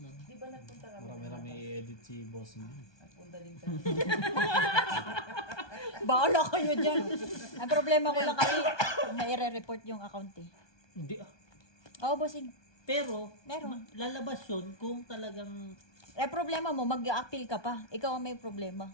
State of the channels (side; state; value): right; late; 1.2 ms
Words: Di ba nagpunta kami? Marami-rami i-edit si boss niya. Nagpunta din kami. Baala kayo dyan. Ang problema ko lang kasi, may report yung account eh. Hindi ah. Oo, bossing. Pero, Meron. lalabas yun kung talagang Problema mo, mag-a-appeal ka pa. Ikaw ang may problema.